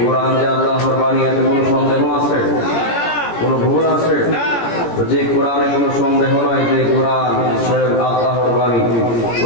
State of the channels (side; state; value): right; late; 17 ms